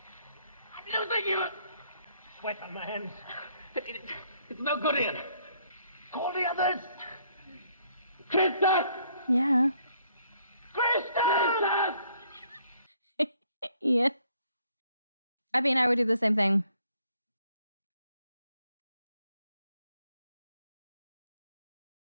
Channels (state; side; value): inverted; both; correlation -0.67